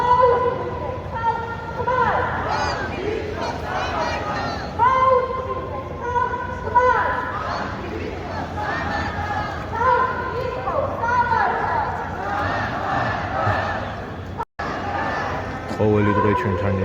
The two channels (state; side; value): identical; both; correlation 1.00